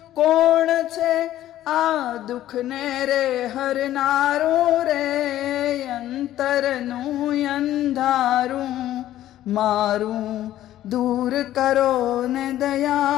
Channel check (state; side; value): quieter; right; 13.2 dB